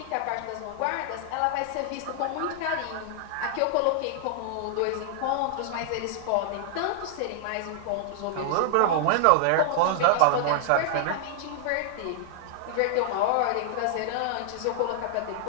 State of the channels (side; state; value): both; different; correlation -0.01